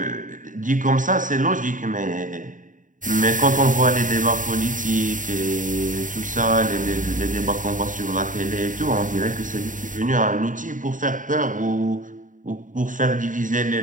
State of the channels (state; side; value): late; left; 0.38 ms